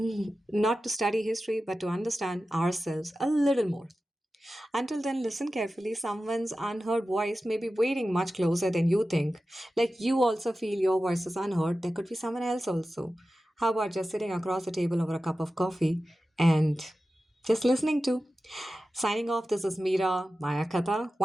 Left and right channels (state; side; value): normal; both; correlation 0.94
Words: not to study history, but to understand ourselves a little more. Until then, listen carefully. Someone's unheard voice may be waiting much closer than you think. Like you also feel your voice is unheard, there could be someone else also. How about just sitting across the table over a cup of coffee and just listening to? Signing off, this is Meera, Mayaakatha.